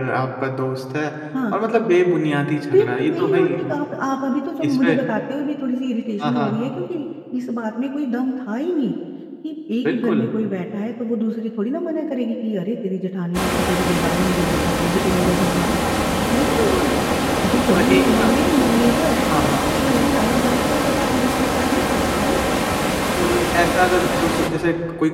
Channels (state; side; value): identical; both; correlation 1.00